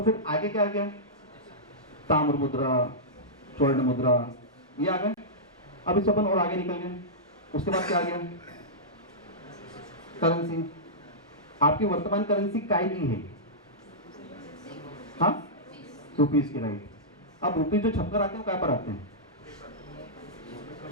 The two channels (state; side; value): normal; both; correlation -0.14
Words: फिर आगे क्या आ गया? ताम्र मुद्रा, स्वर्ण मुद्रा, ये आ गए। अब इससे अपन और आगे निकल गए। उसके बाद क्या आ गया? करेंसी। आपकी वर्तमान करेंसी काय की है? हाँ, रुपीज की, राइट। अब रुपीज जो छपकर आते हैं वो काय पर आते हैं?